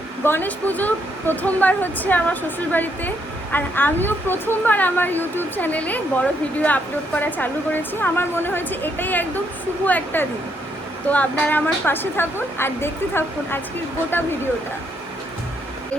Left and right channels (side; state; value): both; normal; correlation 0.74